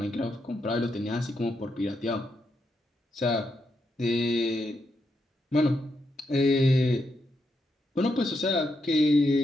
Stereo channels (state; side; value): normal; both; correlation 0.82